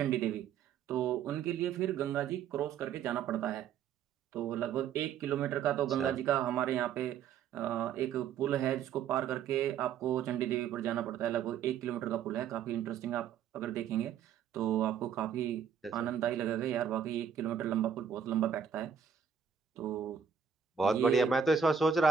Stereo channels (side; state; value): left; quieter; 7.7 dB